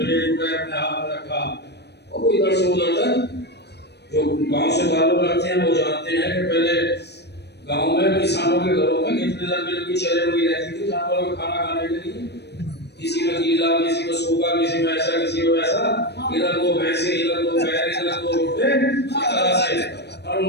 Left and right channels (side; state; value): right; late; 0.49 ms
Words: اٹھائے, اپنے ہاتھ میں رکھا, اور وہ ادھر سے ادھر تک. جو گاؤں سے تعلق رکھتے ہیں وہ جانتے ہیں کہ پہلے گاؤں میں کسانوں کے گھروں میں کتنے لمبی لمبی چلے ہوئی رہتی تھی جانوروں کو کھانا کھانے کے لیے. کسی میں گیلا, کسی میں سوکھا, کسی میں ایسا, کسی میں ویسا, ادھر 2 بھینسیں, ادھر 2 بیل, ادھر 2 روٹے, اس طرح سے, اور